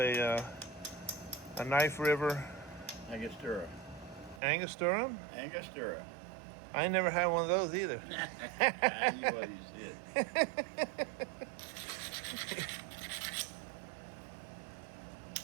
knife river. Angostura. Angostura? Angostura. I ain't never had one of those either. I knew what you said.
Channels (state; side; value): drops out; left; at 4.4 s